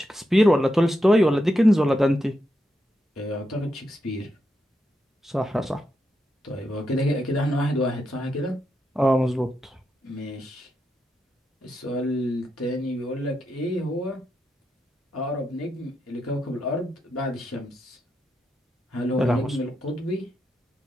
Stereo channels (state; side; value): normal; both; correlation 0.84